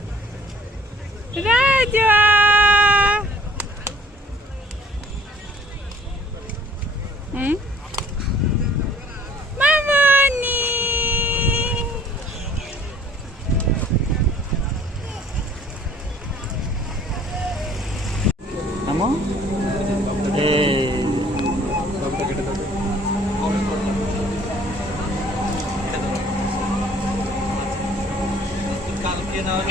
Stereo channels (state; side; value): normal; both; correlation 0.54